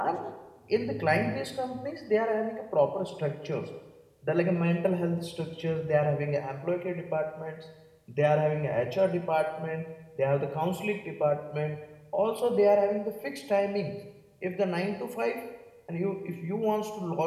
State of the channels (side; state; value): both; identical; correlation 1.00